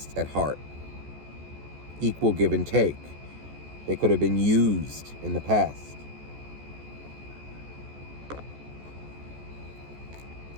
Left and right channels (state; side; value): late; left; 14 ms